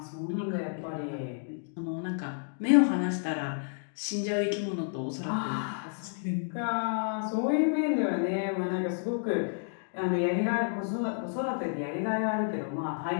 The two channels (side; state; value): right; silent; digital silence